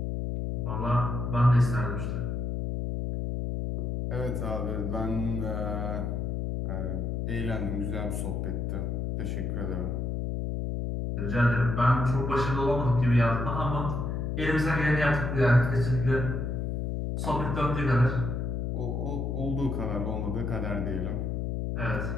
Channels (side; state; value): left; noise; hum, 2 dB below the sound